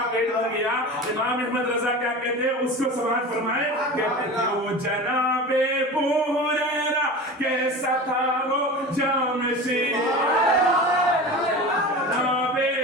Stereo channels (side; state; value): both; normal; correlation 0.32